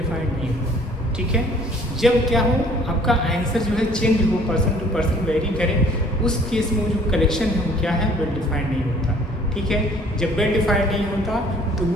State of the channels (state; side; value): normal; both; correlation 0.56